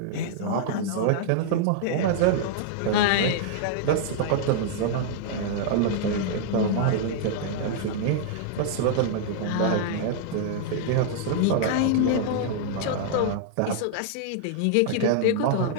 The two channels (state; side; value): different; both; correlation -0.01